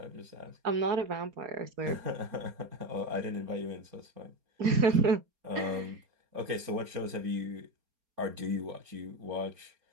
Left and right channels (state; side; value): late; left; 4.3 ms